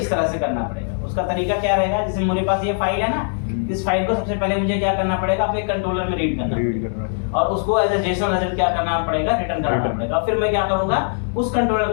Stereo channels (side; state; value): right; silent; 65 dB below the other